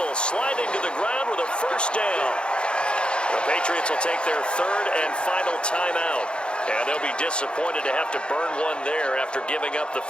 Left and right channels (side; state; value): right; late; 0.054 ms